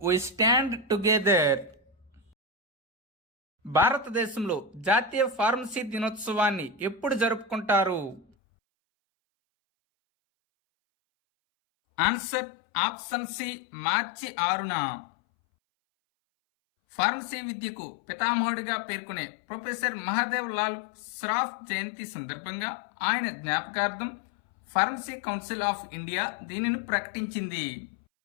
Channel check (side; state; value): right; drops out; at 8.2 s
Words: వి స్టాండ్ టుగెదర్. భారతదేశంలో జాతీయ ఫార్మసీ దినోత్సవాన్ని ఎప్పుడు జరుపుకుంటారు? ఆన్సర్ ఆప్షన్ సి మార్చి 6న. ఫార్మసీ విద్యకు పితామహుడిగా పేర్కొనే ప్రొఫెసర్ మహాదేవ్ లాల్ శ్రాఫ్ జయంతి సందర్భంగా ఆయన జ్ఞాపకార్థం ఫార్మసీ కౌన్సిల్ ఆఫ్ ఇండియా దీనిని ప్రకటించింది.